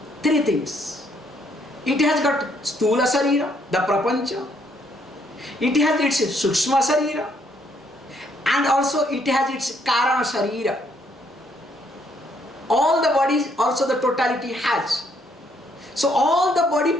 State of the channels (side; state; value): both; normal; correlation 0.70